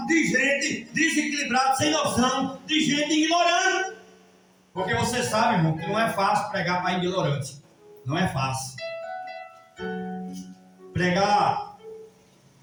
de gente desequilibrada, sem noção, de gente ignorante. Porque você sabe, irmão, que não é fácil pregar para ignorante. Não é fácil. Pregar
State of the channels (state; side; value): identical; both; correlation 1.00